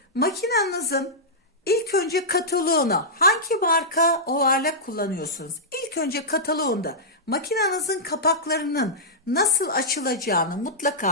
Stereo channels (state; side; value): normal; both; correlation -0.12